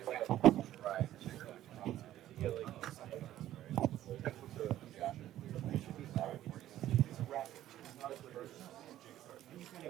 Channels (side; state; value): left; quieter; 13.1 dB